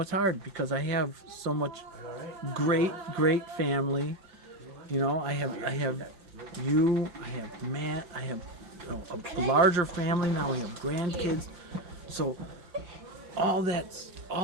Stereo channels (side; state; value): left; late; 5.8 ms